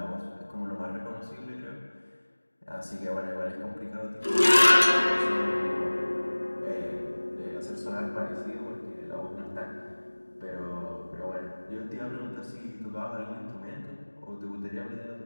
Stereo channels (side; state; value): both; inverted; correlation -1.00